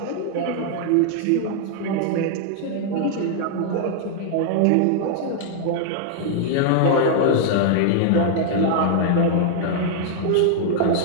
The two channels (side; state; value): both; different; correlation -0.01